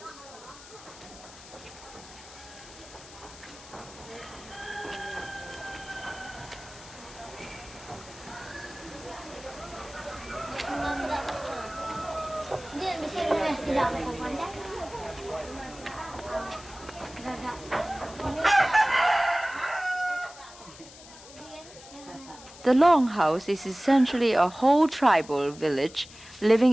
The longhouse is essentially a whole tribal village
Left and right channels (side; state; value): left; noise; hiss, 18 dB below the sound